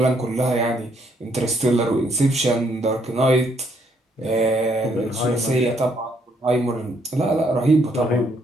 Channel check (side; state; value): both; normal; correlation 0.71